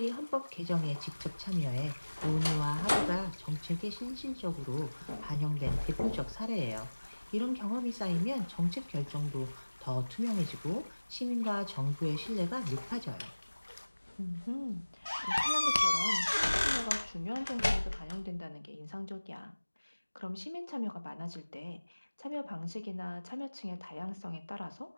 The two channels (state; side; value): inverted; both; correlation -1.00